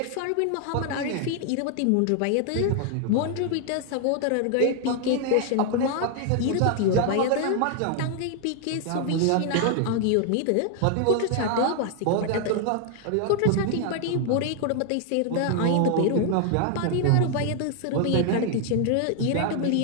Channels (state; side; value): different; both; correlation 0.00